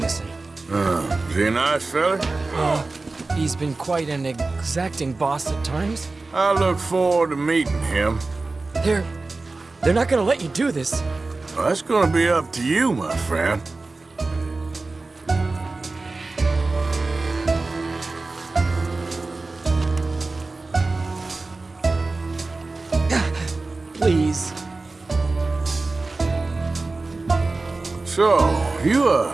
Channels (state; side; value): quieter; left; 3.5 dB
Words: Is he a nice fella? He's been quite an exacting boss at times. I look forward to meeting him. They're not gonna let you do this. Well, that's gonna be up to you, my friend. Please. So, you